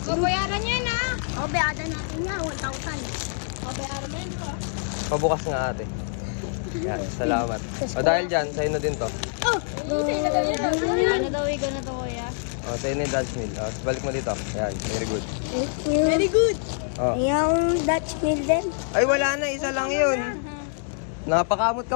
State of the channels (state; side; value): silent; right; digital silence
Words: Babayaran niya na. Babayaran natin niya, 1,000. Babayaran niya na. Pabukas nga ate. Yan, salamat. O dahil dyan, sa'yo na din to. Oh! Ano daw, ikaw na to, Kuya? O, sa'yo na yung Dutch meal. O, balik mo dito. Yan, very good. Very good. O. Yung Dutch meal din. Ay, wala na. Isa lang yun. Napakamot ka